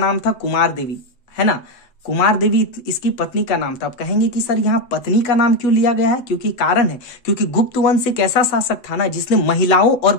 था कुमार देवी, है ना। कुमार देवी इसकी पत्नी का नाम था। अब कहेंगे कि सर यहाँ पत्नी का नाम क्यों लिया गया है? क्योंकि कारण है, क्योंकि गुप्त वंश एक ऐसा शासक था ना जिसने महिलाओं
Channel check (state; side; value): late; right; 7.8 ms